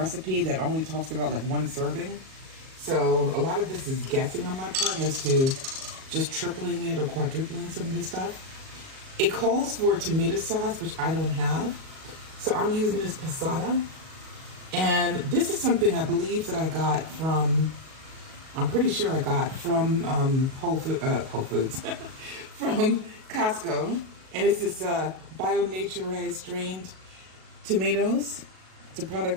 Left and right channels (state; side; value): late; left; 37 ms